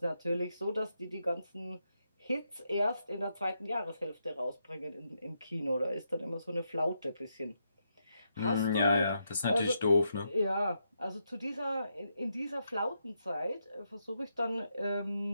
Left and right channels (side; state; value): both; inverted; correlation -0.82